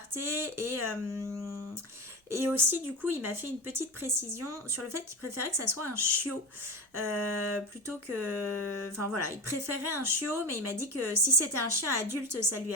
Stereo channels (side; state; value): both; normal; correlation 0.22